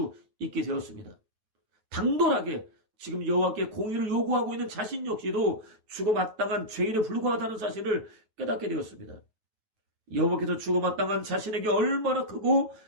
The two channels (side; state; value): left; late; 9.3 ms